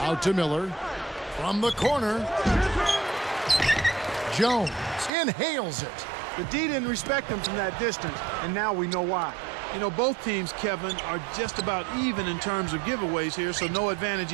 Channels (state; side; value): drops out; left; at 5.1 s